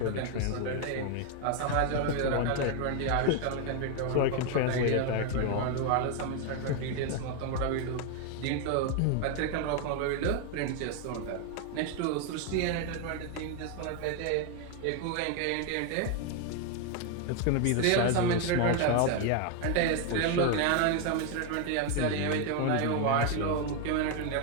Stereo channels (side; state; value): both; different; correlation 0.01